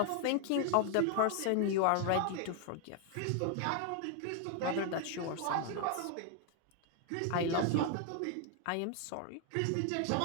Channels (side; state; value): both; different; correlation 0.00